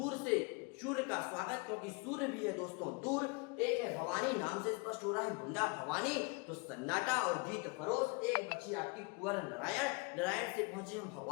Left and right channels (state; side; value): quieter; right; 29.5 dB